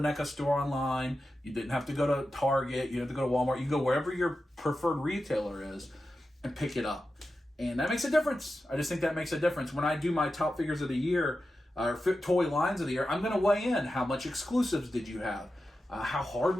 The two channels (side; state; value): both; normal; correlation 0.91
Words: store online. You didn't have to go to Target. You didn't have to go to Walmart. You go wherever your preferred retailer is and pick it up. And that makes a difference. I just think that makes a difference. When I do my top figures of the year, or toy lines of the year, I'm going to weigh in. How much exclusives did you have? How hard